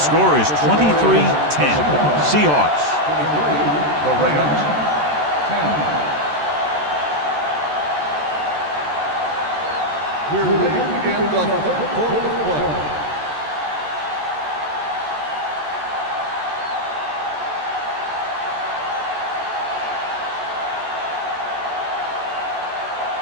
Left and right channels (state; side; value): late; left; 14 ms